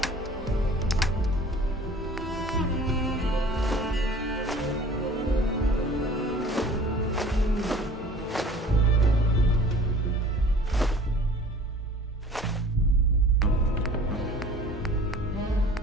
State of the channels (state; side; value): normal; both; correlation 0.47